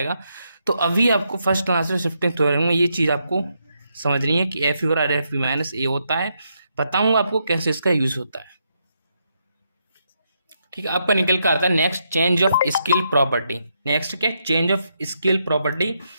तो अभी आपको फर्स्ट आंसर शिफ्टिंग थ्योरम में ये चीज़ आपको समझनी है कि एफ यू और एफ बी माइनस ए होता है, बताऊंगा आपको कैसे इसका यूज होता है, ठीक है। आपका निकल कर आता है next, change of scale property. Next क्या, चेंज ऑफ स्केल प्रॉपर्टी।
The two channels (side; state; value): both; inverted; correlation -0.80